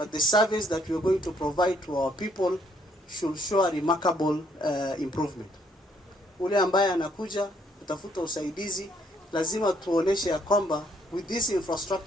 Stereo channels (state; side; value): normal; both; correlation 0.69